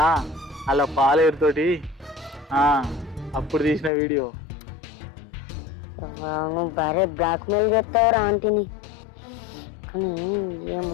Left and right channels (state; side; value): drops out; right; at 3.9 s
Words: అలా పాలేరుతోటి అప్పుడు తీసిన వీడియో. నువ్వు భారీ బ్లాక్మెయిల్ చేస్తావురా ఆంటీని. కానీ